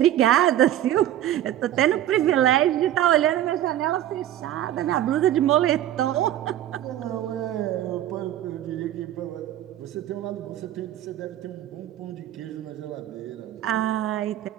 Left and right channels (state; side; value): quieter; left; 12.4 dB